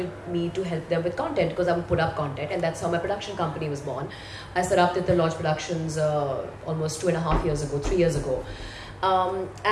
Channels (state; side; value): identical; both; correlation 1.00